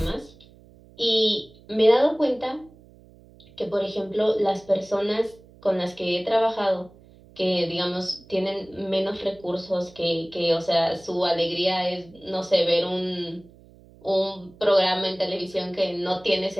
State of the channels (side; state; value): right; noise; hum, 25 dB below the sound